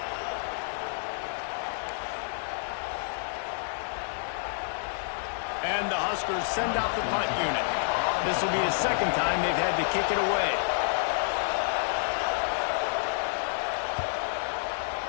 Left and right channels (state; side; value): silent; right; 58 dB below the other